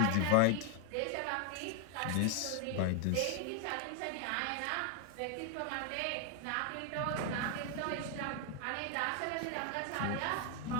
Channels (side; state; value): both; different; correlation 0.00